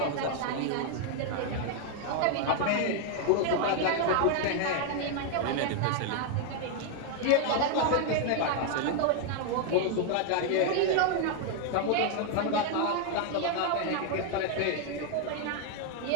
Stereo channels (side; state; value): both; different; correlation 0.00